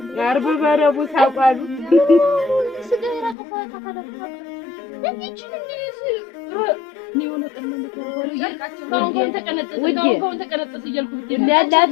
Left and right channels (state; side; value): drops out; right; at 3.4 s